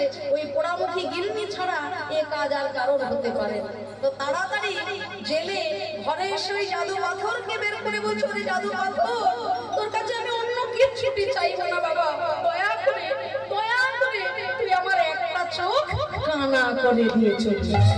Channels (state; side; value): identical; both; correlation 1.00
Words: ওই পোড়ামুখী গিন্নি ছাড়া এ কাজ আর কারোর হতে পারে না। তো তাড়াতাড়ি জেলে ঘরে এসে ওই জাদু পাথরকে বের করে বলছে, ওরে জাদু পাথর, তোর কাছে আমি অন্য কিছুটি চাইবো না বাবা, দয়া করে তুই আমার একটা চোখ কানা করে দিয়ে চলছিস।